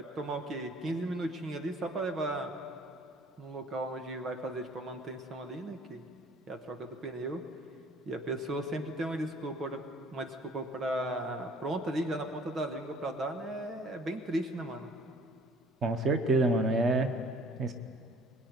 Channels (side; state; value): both; normal; correlation 0.54